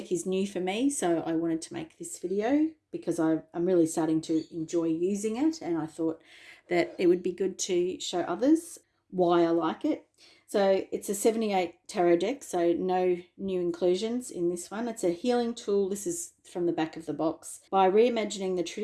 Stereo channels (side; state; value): both; identical; correlation 1.00